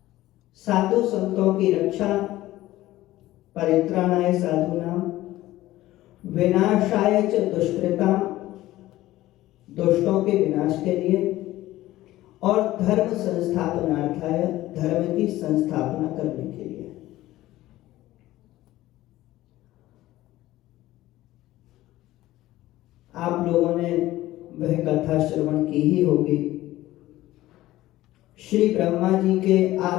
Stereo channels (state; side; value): quieter; right; 16.1 dB